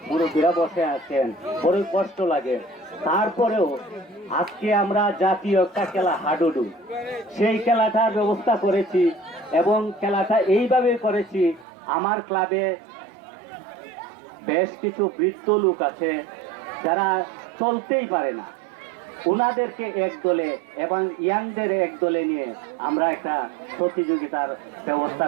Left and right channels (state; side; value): drops out; left; at 11.7 s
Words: মুরব্বীরা বসে আছেন, বড়ই কষ্ট লাগে, তারপরেও আজকে আমরা জাতীয় একটা খেলা হাডুডু, সেই খেলাটার ব্যবস্থা করেছি এবং খেলাটা এইভাবে করেছি। আমার ক্লাবে বেশ কিছু বৃদ্ধ লোক আছে যারা চলতেই পারে না, ওনাদেরকে এক দলে এবং ইয়াংদের এক দলে নিয়ে আমরা একটা প্রতিযোগিতার ব্যবস্থা